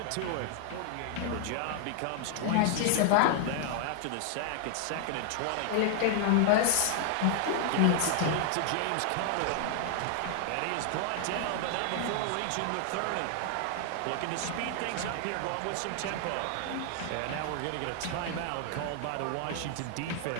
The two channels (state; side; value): different; both; correlation 0.00